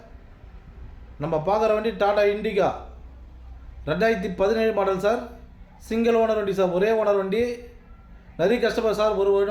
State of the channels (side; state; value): both; identical; correlation 1.00